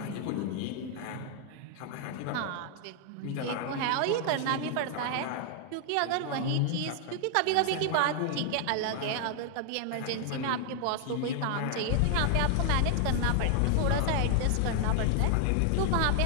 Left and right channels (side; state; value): both; different; correlation 0.00